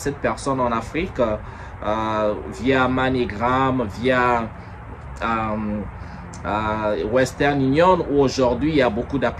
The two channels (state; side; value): identical; both; correlation 1.00